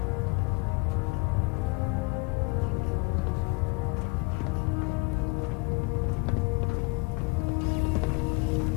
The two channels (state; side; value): quieter; right; 28.3 dB